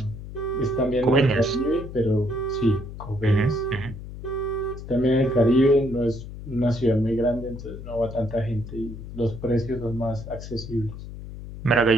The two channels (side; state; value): left; noise; hum, 11 dB below the sound